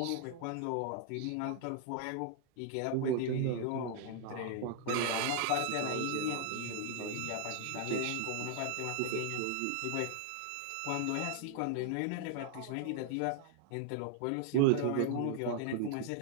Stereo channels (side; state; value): both; different; correlation -0.01